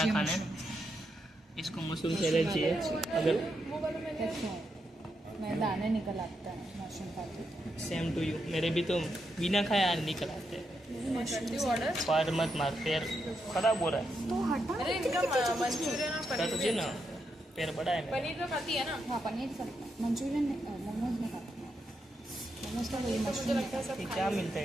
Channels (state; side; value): normal; both; correlation 0.83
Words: खाने। इसको मशरूम सैलेड चाहिए। अगर मैं दाने निकल आता है मशरूम खाती। सेम टू यू, मेरे भी तो बिना खाया निकल आते हैं। पार मत मार, पैर खराब हो रहा है। तो हटा। अरे इनका मंचूरियन तो ना पैर बड़ा है। पनीर तो खाती है ना। हाँ पनीर सब, मंचूरियन मोमोज नहीं खाती। मोमोज का वही मशरूम लगता है सब क्या मिलता है